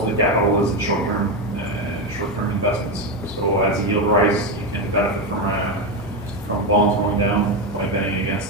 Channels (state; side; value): normal; both; correlation 0.11